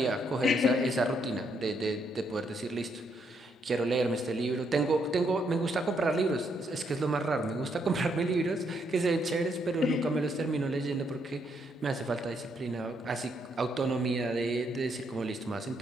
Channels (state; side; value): normal; both; correlation 0.75